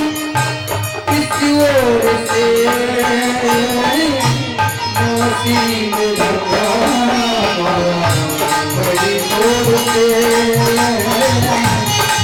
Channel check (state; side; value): identical; both; correlation 1.00